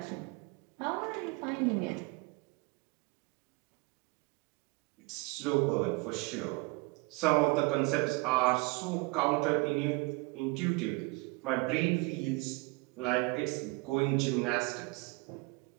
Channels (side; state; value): left; quieter; 26.9 dB